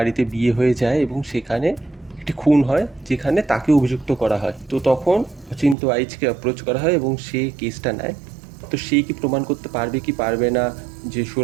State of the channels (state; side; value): drops out; left; at 5.8 s